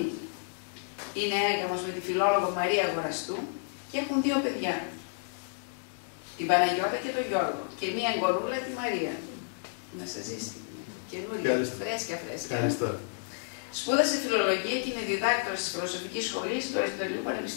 Είναι έγαμος με τη φιλόλογο Μαρία Αγοραστού και έχουν 2 παιδιά. Την Παναγιώτα και τον Γιώργο. Και μία εγγονούλα, τη Μαρία. Να σας ζήσει. Καινούργια, φρέσκια. Ευχαριστώ. Σπούδασε φιλολογία και είναι διδάκτορας της Φιλοσοφικής Σχολής του Αριστοτελείου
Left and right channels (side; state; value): right; silent; digital silence